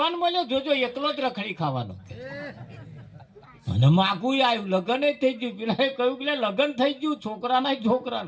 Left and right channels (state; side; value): identical; both; correlation 1.00